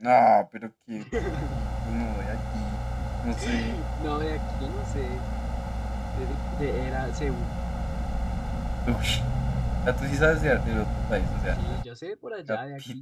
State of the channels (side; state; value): both; identical; correlation 1.00